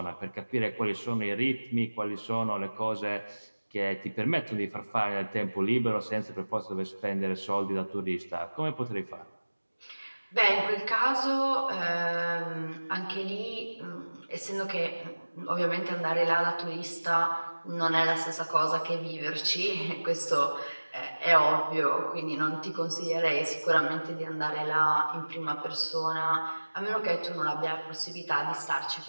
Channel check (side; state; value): both; inverted; correlation -1.00